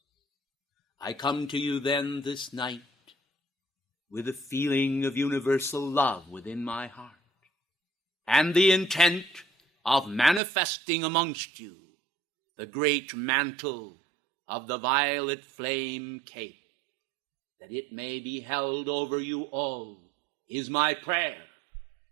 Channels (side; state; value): left; drops out; at 10.4 s